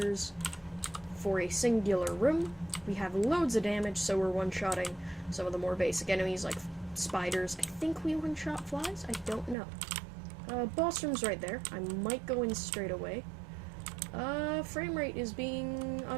For a singular room, we have loads of damage, so we're one-shotting some of the more basic enemies, like spiders. I think we one-shot flies? I don't know. Boss room's right there. I might go in straight away. Frame rate is being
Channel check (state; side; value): drops out; left; at 9.6 s